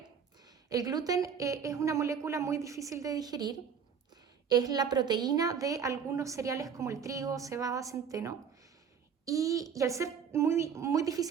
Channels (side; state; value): left; quieter; 7.0 dB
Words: el gluten es una molécula muy difícil de digerir, es la proteína de algunos cereales como el trigo, cebada, centeno, y al ser muy, muy